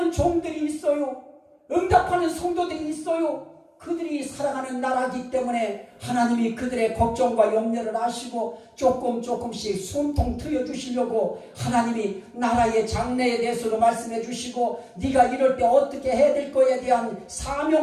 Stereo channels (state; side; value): identical; both; correlation 1.00